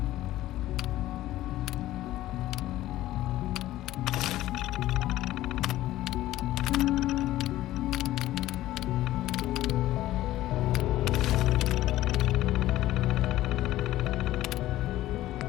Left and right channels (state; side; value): quieter; right; 15.1 dB